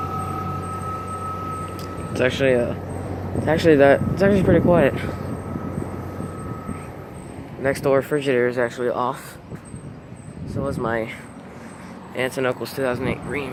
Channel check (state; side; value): identical; both; correlation 1.00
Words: It's actually pretty quiet. Next door refrigerator is actually off. So is my aunt and uncle's 2008 Dream.